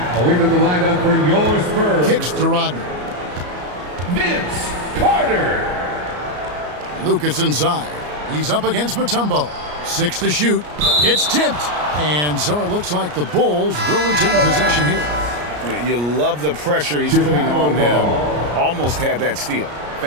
into the lineup for your Spurs. Kicks to Rodman. Vince Carter. Lucas inside. He's up against Mutombo. 6 to shoot. It's tipped. And so it looks like the Bulls will retain possession here. You love the pressure he's putting on them. Almost had that steal.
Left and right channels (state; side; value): late; left; 34 ms